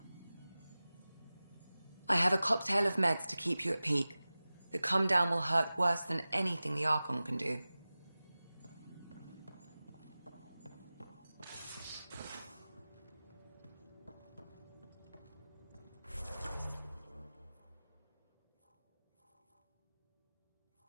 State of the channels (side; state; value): both; inverted; correlation -0.97